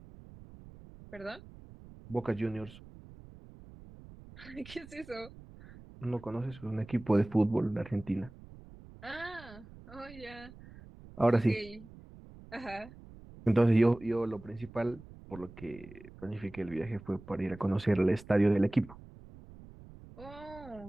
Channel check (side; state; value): right; noise; rumble, 19 dB below the sound